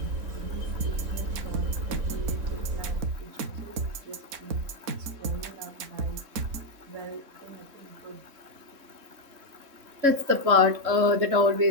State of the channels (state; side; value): late; left; 3.7 ms